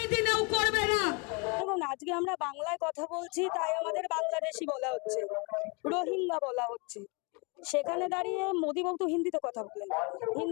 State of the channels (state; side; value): quieter; right; 30.7 dB